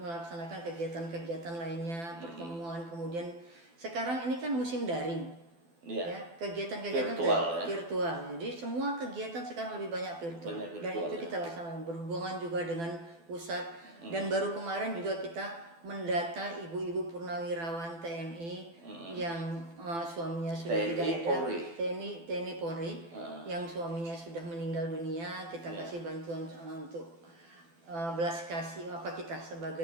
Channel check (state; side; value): late; left; 12 ms